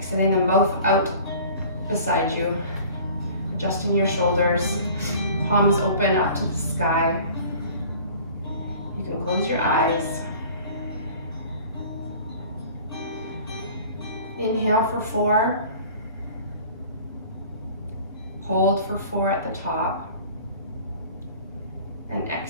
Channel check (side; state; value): both; inverted; correlation -0.46